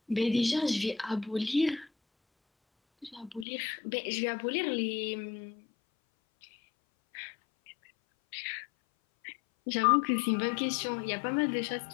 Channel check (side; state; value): right; drops out; at 3.5 s